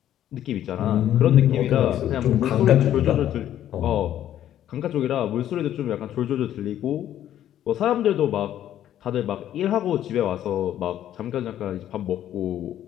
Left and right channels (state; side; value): quieter; right; 11.5 dB